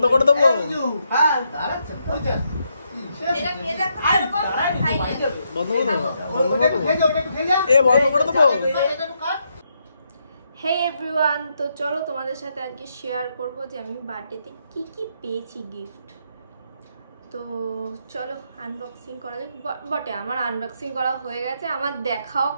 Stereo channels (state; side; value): inverted; both; correlation -0.78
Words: করে দেবো। বন্ধ করে দেবো, বন্ধ করে দেবো। হে এভরিওয়ান, তো চলো তোমাদের সাথে আজকে শেয়ার করব যে আমি বার্থডেতে কি কি পেয়েছি গিফট। তো চলো আনবক্সিং করা যাক। বটে আমার আনবক্সিং করা হয়ে গেছে, আমার দেখাও